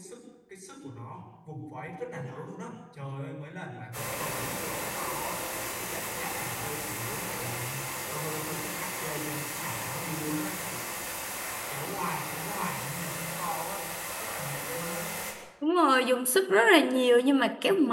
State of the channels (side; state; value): both; identical; correlation 1.00